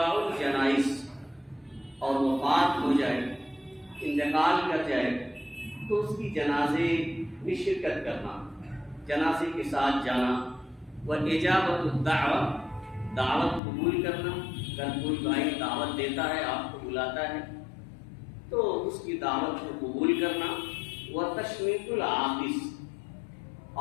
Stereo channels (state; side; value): drops out; right; at 13.6 s